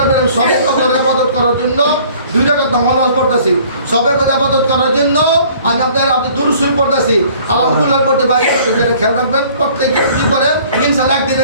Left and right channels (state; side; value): inverted; both; correlation -0.54